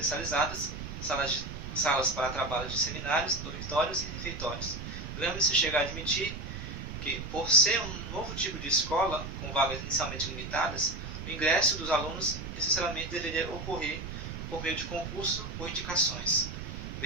salas para trabalho de seminários, dormitórios e refeitórios. Gramsci chega a admitir que, por ser um novo tipo de escola, com vagas inicialmente limitadas, o ingresso dos alunos necessariamente deveria ocorrer por meio de concurso ou indicações.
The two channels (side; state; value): right; noise; rumble, 8 dB below the sound